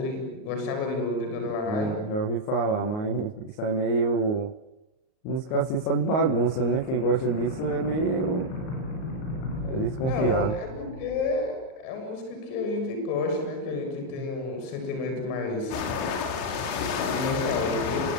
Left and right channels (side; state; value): right; late; 38 ms